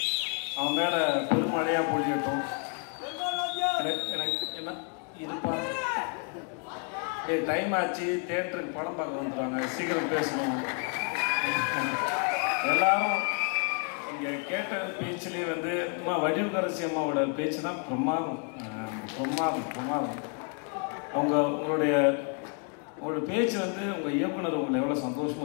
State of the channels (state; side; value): quieter; right; 39.0 dB